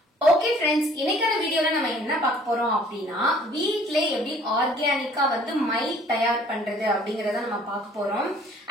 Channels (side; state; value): both; normal; correlation 0.55